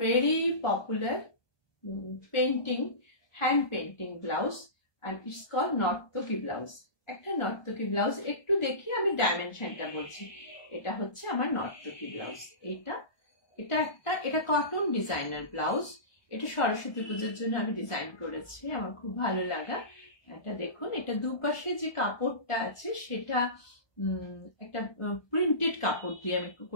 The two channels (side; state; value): right; late; 1.2 ms